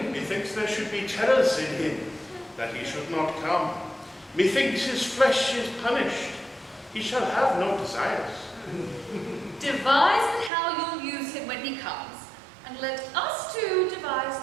Methinks there should be terrors in him, that he should not come. Methinks his flesh is punished. He shall have no desires. Devise how you'll use him when he comes, and let us two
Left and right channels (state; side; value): drops out; left; at 10.5 s